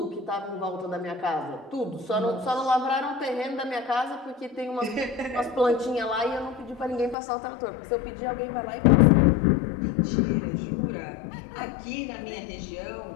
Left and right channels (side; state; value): right; drops out; at 7.2 s